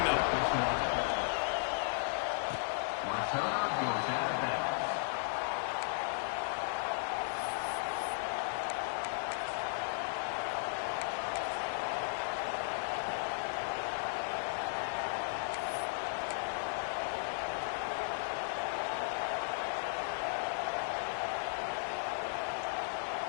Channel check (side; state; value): right; silent; 54 dB below the other